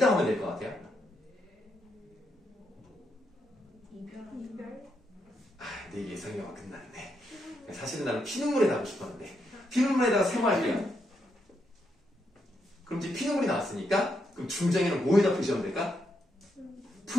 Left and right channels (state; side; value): normal; both; correlation 0.80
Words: 하면 될 것 같아요? 내 예상이가 끝났네. 사실은 나는 피눈물에 하고 싶었는데 피눈물에다가 세모할게요. 그럼 이제 피눈물이 나왔으니까 그럼 중장에는 뭐에다 표시하면 될까?